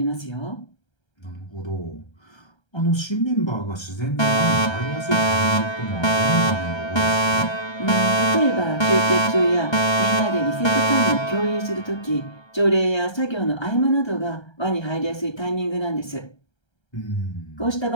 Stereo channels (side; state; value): right; late; 1.3 ms